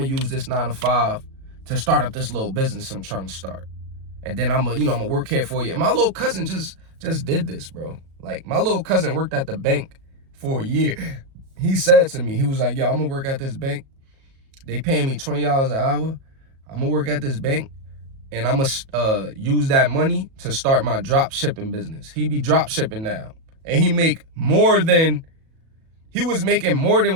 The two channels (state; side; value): late; left; 37 ms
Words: to use this 9 to 5 to start up this little business I'm trying to start. And then I'm going to work here for you. And my little cousin just did this, bro. Like, my little cousin worked at the bank for a year. He said to me, he was like, yo, I'm going to work at this bank. They paying me $20 an hour. I'm going to work at this bank. And I'm going to use that money to start my drop shipping business. He be drop shipping now. And he was making more than